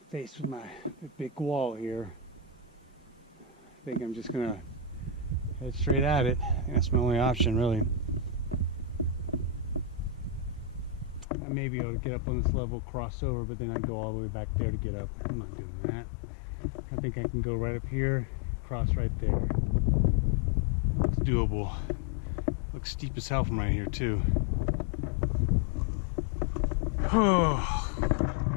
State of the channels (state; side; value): drops out; right; at 11.2 s